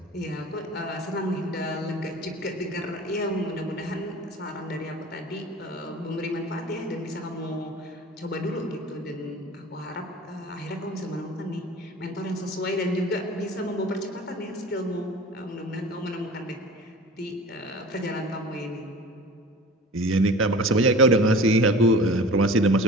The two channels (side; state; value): both; normal; correlation 0.40